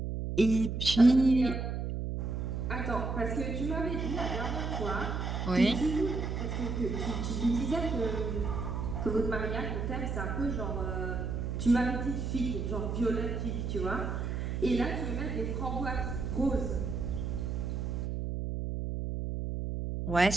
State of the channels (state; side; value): noise; right; hum, 2 dB below the sound